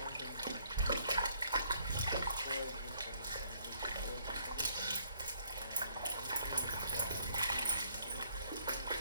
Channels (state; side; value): inverted; both; correlation -0.66